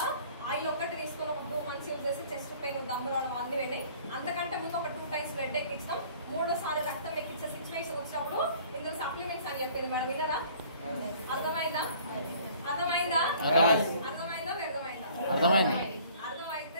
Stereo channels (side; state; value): both; inverted; correlation -0.53